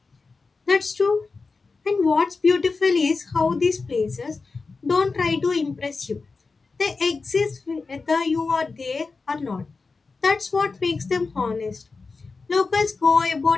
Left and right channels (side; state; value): right; quieter; 4.2 dB